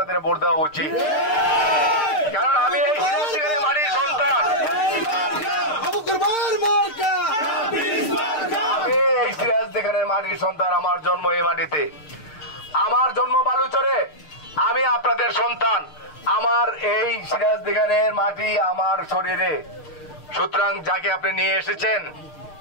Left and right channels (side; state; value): right; late; 6.6 ms